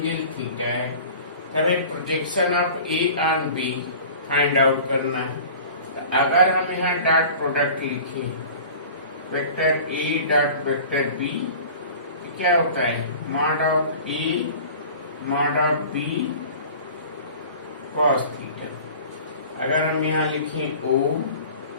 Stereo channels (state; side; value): inverted; both; correlation -0.42